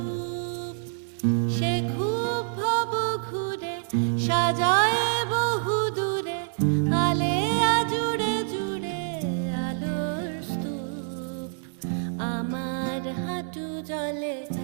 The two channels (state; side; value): silent; left; 60 dB below the other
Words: সে খুব ভব ঘুরে সাজায় বহু দূরে, আলেয়া জুড়ে জুড়ে আলোর স্তূপ। আমার হাঁটু জলে,